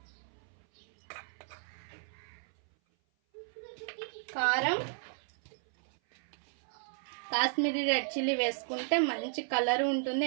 కారం, కాశ్మీరీ రెడ్ చిల్లీ వేసుకుంటే మంచి కలర్ ఉంటుంది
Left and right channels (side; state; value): left; silent; 55 dB below the other